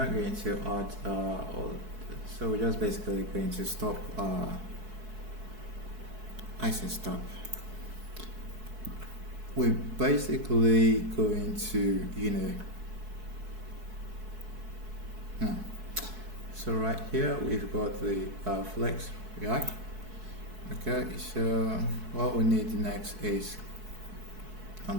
going to add so we're just basically going to stop I say stop. we're basically going to, so right here we've got the flex React. Okay, so what we need next is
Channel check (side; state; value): left; late; 4.6 ms